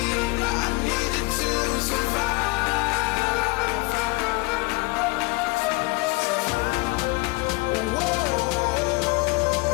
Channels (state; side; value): quieter; right; 25.8 dB